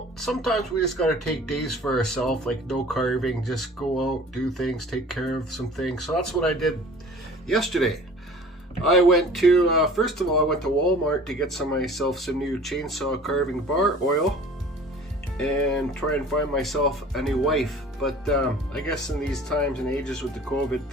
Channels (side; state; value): both; normal; correlation 0.46